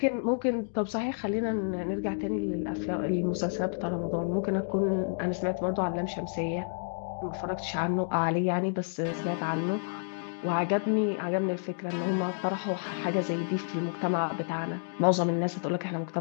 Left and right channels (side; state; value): right; silent; digital silence